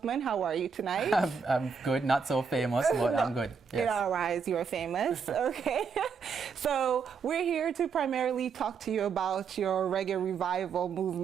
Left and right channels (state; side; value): quieter; left; 5.9 dB